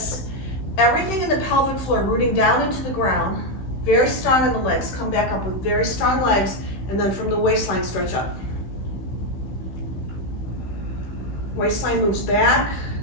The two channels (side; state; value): right; late; 16 ms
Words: everything in the pelvic floor, rooting down into the ground. Very strong in the legs. Come back up with very strong legs, and then from the waistline, stretch up. Waistline moves back.